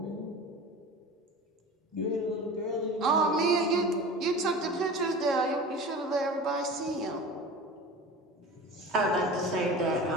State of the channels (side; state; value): both; normal; correlation 0.35